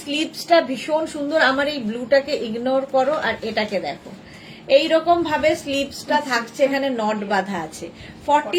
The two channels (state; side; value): identical; both; correlation 1.00